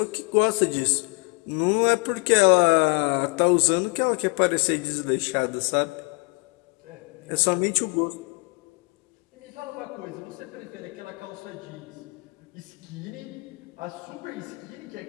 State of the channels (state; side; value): quieter; right; 30.8 dB